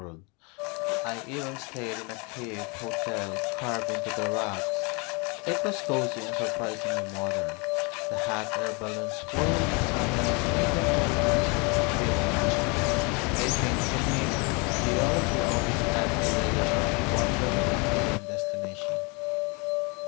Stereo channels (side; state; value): right; quieter; 30.8 dB